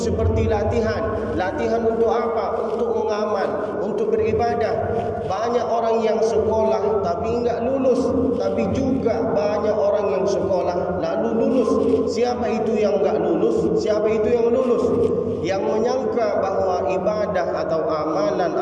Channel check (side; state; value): both; identical; correlation 1.00